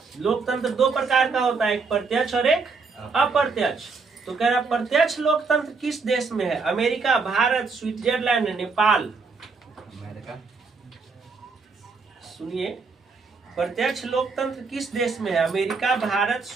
लोकतंत्र दो प्रकार का होता है, एक प्रत्यक्ष और एक अप्रत्यक्ष। तो कह रहा प्रत्यक्ष लोकतंत्र किस देश में है? America, Bharat, Switzerland, Nepal. सुनिए, प्रत्यक्ष लोकतंत्र किस देश में है? America, Bharat,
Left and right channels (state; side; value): quieter; left; 4.6 dB